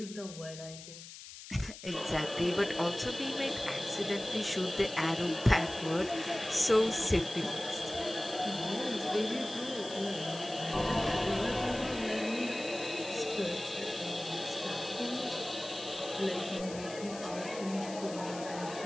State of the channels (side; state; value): left; noise; hiss, 14 dB below the sound